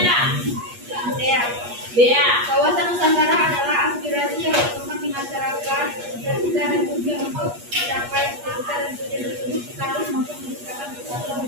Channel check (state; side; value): late; left; 8.4 ms